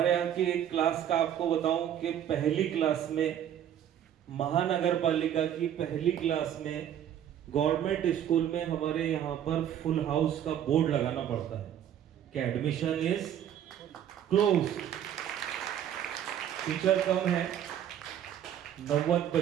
यहाँ की एक क्लास का आपको बताऊं कि पहली क्लास में, महानगर पालिका की पहली क्लास में, गवर्नमेंट स्कूल में हमारे यहाँ पर फुल हाउस का बोर्ड लगाना पड़ता है कि एडमिशन इज क्लोज। टीचर कम है, 90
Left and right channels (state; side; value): quieter; left; 10.2 dB